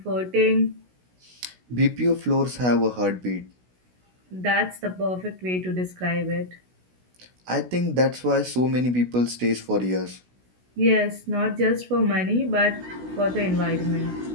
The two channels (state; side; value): late; left; 16 ms